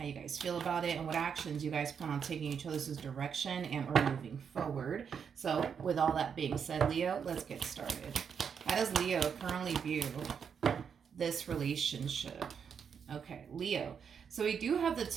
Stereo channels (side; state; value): left; quieter; 7.0 dB